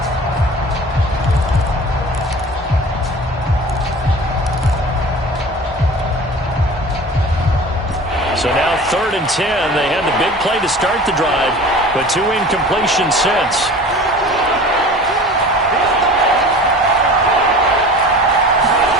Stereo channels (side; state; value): both; normal; correlation 0.40